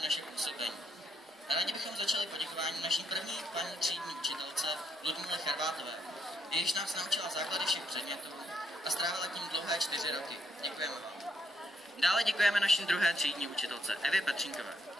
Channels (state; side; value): normal; both; correlation 0.74